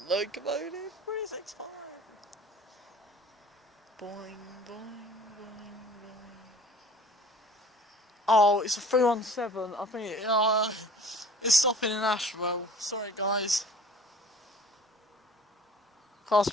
locomotive 365. Boing, boing, boing, boing. Oh, it's a 317. I think it's stopping in Ashwell. Sorry, guys. Class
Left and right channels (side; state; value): both; normal; correlation 0.47